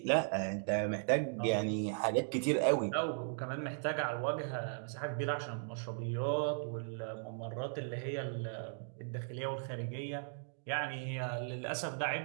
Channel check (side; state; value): left; silent; digital silence